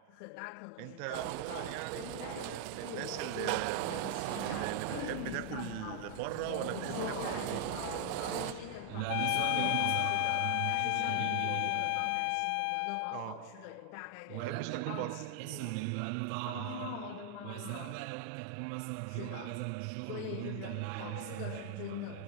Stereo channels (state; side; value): different; both; correlation 0.00